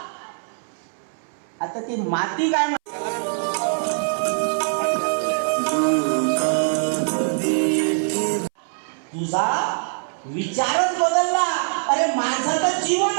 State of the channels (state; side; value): silent; left; 59 dB below the other